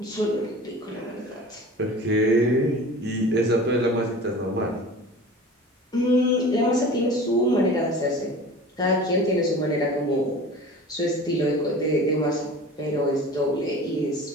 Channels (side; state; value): both; normal; correlation 0.39